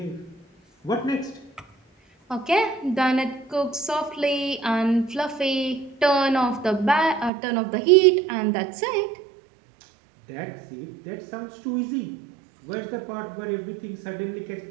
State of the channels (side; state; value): left; drops out; at 7.3 s